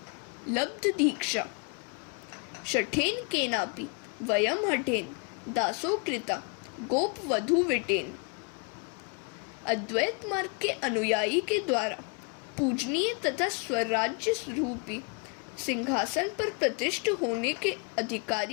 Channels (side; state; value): right; quieter; 34.4 dB